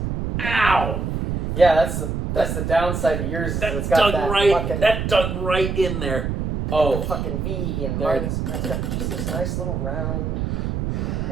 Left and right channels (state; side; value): noise; right; rumble, 2 dB below the sound